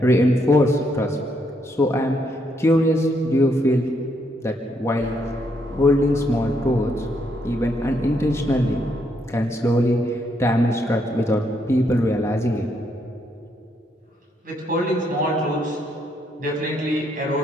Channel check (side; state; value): both; normal; correlation 0.75